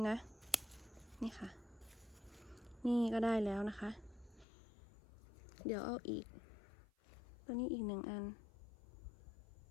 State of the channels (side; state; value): right; drops out; at 4.5 s